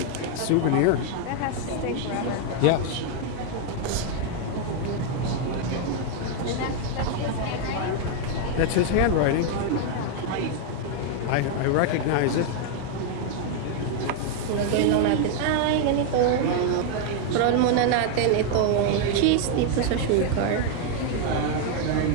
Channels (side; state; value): both; different; correlation 0.00